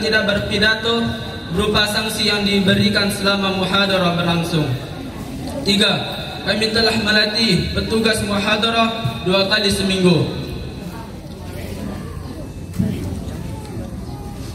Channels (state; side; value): identical; both; correlation 1.00